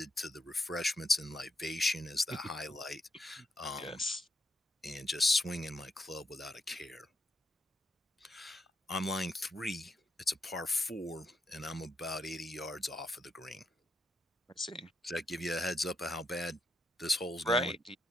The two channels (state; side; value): normal; both; correlation 0.81